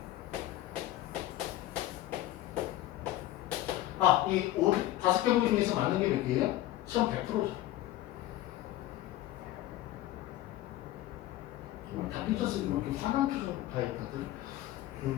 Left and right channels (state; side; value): quieter; right; 14.9 dB